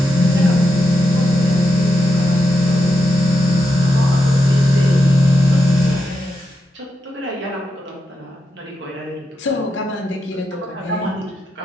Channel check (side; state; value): both; normal; correlation 0.86